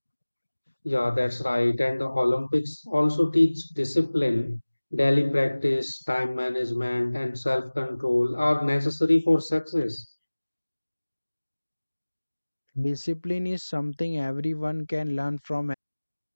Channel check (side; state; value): both; inverted; correlation -1.00